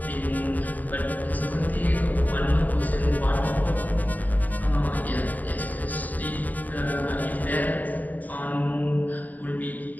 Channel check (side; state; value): right; late; 0.081 ms